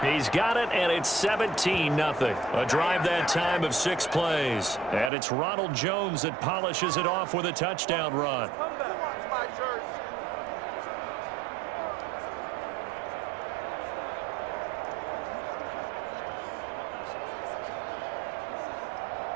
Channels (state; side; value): drops out; left; at 5.1 s